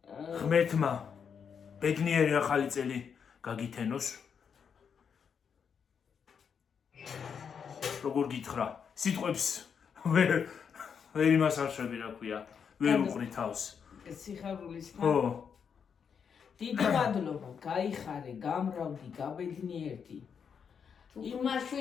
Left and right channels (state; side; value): quieter; right; 6.9 dB